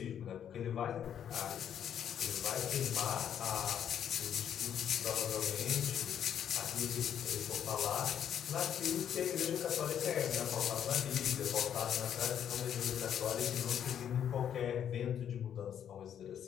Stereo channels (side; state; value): right; quieter; 9.3 dB